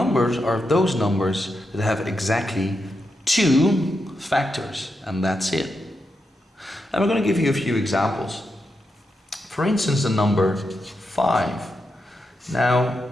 are those numbers that have exactly 2 factors, and that's it. And we're going to give you a few examples. For instance, the number 5. Now,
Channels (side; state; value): both; normal; correlation 0.85